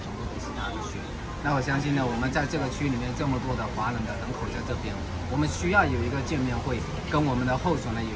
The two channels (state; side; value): identical; both; correlation 1.00